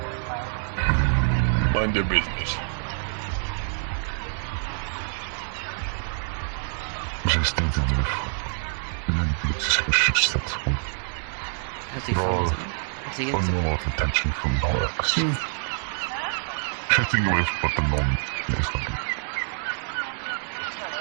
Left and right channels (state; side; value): silent; left; 61 dB below the other